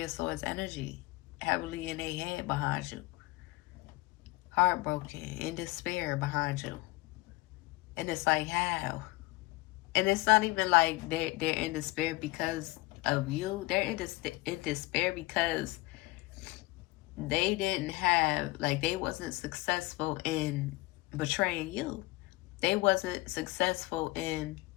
of Swords energy, heavily in their head behind you, heartbroken, in despair behind you. And it's like, how? And it's not even like they're in despair because of you. They're in despair because they didn't have, like, they wasn't successful in betraying you. They wasn't successful in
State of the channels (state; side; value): quieter; right; 21.8 dB